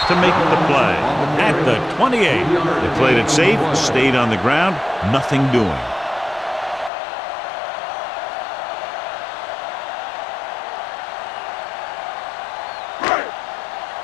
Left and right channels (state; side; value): drops out; right; at 6.9 s